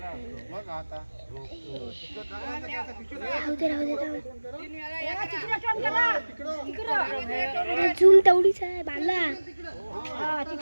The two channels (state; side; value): inverted; both; correlation -1.00